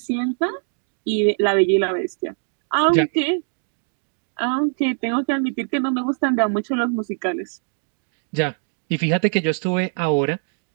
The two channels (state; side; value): silent; left; 64 dB below the other